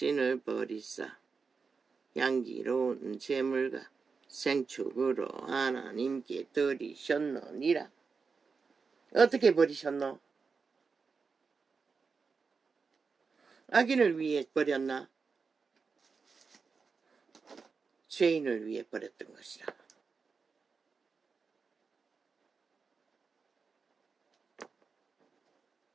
버리사 향기로운 제물과 생축으로 하나님께 드리셨느니라. 어떻게 버리셨노? 악인을 위해 버렸나? 죄인을 위해 버렸던 것이라.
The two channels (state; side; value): quieter; left; 5.0 dB